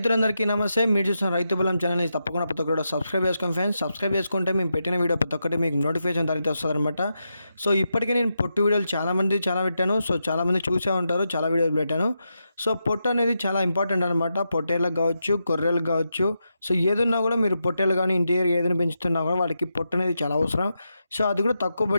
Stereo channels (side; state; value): both; inverted; correlation -0.86